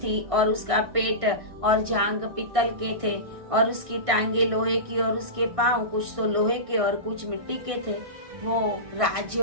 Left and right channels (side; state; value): left; late; 1.6 ms